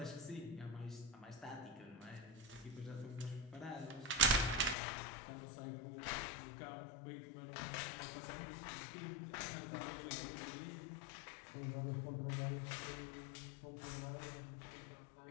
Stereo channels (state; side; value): drops out; right; at 4.8 s